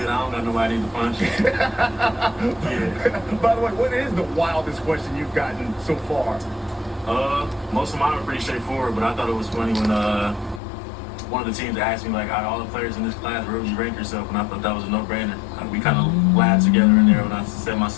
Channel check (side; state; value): right; drops out; at 10.6 s